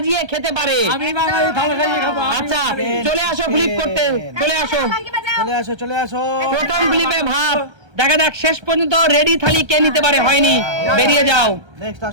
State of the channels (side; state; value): left; late; 1.3 ms